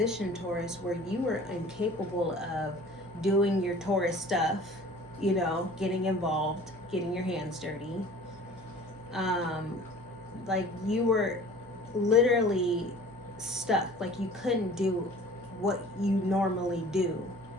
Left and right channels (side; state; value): right; noise; hum, 22 dB below the sound